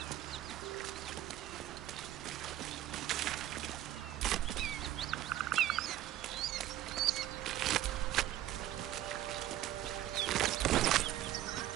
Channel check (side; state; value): left; quieter; 13.1 dB